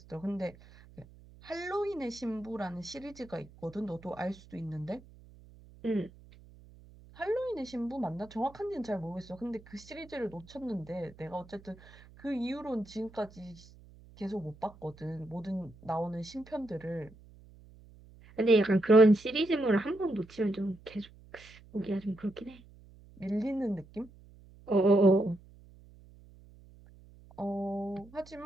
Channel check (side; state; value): right; noise; hum, 22 dB below the sound